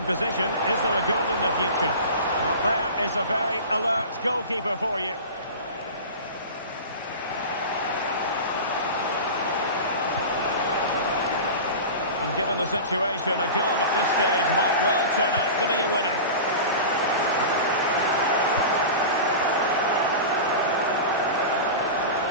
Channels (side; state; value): both; inverted; correlation -0.31